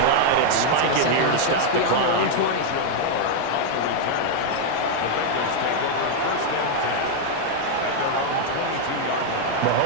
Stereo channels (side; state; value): both; different; correlation 0.00